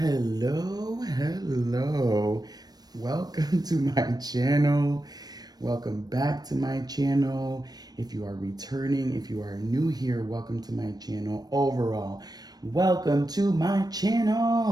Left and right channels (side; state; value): left; late; 0.19 ms